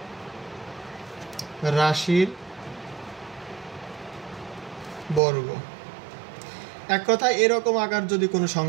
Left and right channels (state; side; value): drops out; left; at 5.2 s